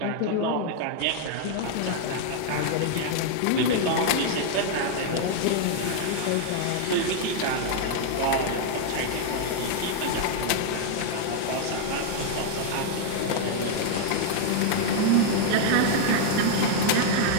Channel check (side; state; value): both; different; correlation 0.00